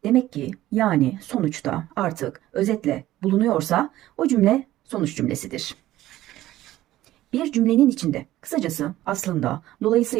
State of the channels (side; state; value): left; quieter; 14.9 dB